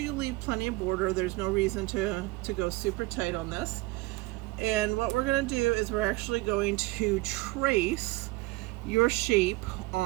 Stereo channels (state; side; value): quieter; left; 21.1 dB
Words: leave plenty of border. There's no reason to go super tight on this. And what we're going to do is we're actually going to trace your shape